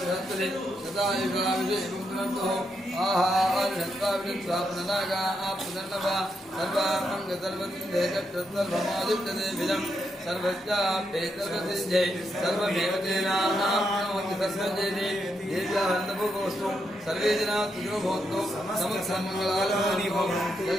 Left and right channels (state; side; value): normal; both; correlation 0.81